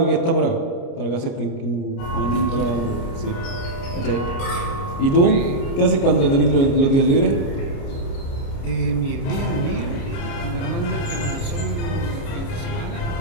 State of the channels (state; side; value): late; right; 29 ms